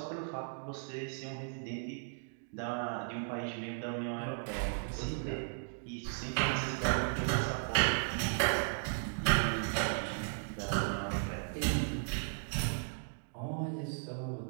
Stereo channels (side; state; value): left; silent; digital silence